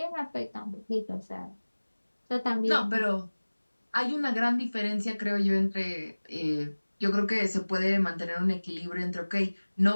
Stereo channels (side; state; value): both; inverted; correlation -1.00